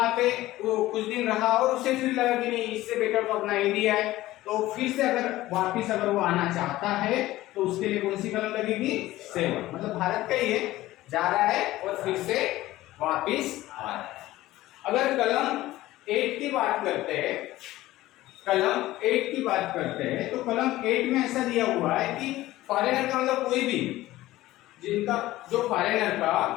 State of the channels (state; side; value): quieter; right; 16.5 dB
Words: पे वो कुछ दिन रहा और उसे फिर लगा कि नहीं, इससे बेटर तो अपना इंडिया है, तो फिर से अगर वापिस अगर वो आना चाहता है तो उसके लिए कौन सी कलम लगेगी? 7, मतलब भारत का ही है, जा रहा है और फिर से वापिस आ रहा है। अगर कलम 8 की बात करते हैं, कलम 8 की बात करते हैं, तो कलम 8 में ऐसा दिया हुआ है कि फॉरेनर का मतलब कोई भी, जिनका जो फॉरेनर